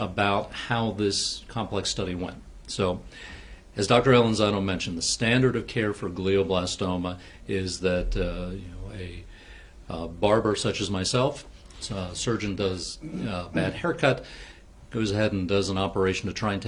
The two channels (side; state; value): both; identical; correlation 1.00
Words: how this complex study went. So, as Dr. Alanzano mentioned, the standard of care for glioblastoma is that a barber such as myself, a surgeon does a bad haircut, goes ahead and does an operation to try and